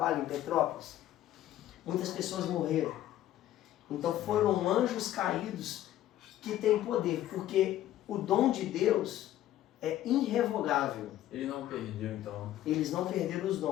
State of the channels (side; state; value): right; quieter; 13.1 dB